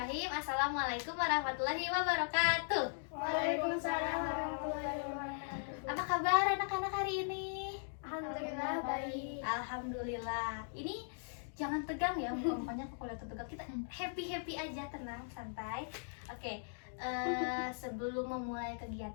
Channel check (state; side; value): silent; right; digital silence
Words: Assalamualaikum warahmatullahi wabarakatuh. Waalaikumsalam warahmatullahi wabarakatuh. Apa kabar anak-anak hari ini? Alhamdulillah baik. Alhamdulillah. Ini jangan tegang ya, mukanya kalau lihat tegang. Kita happy aja, tenang, santai. Oke. Sebelum memulai